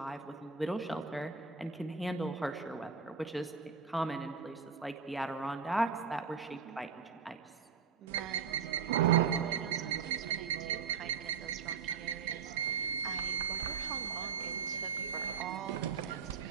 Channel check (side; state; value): left; quieter; 5.9 dB